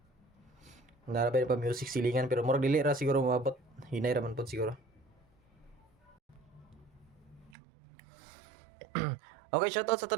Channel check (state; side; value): drops out; left; at 7.6 s